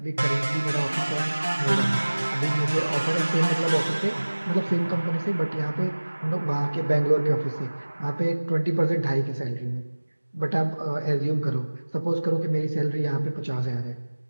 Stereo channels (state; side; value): inverted; both; correlation -1.00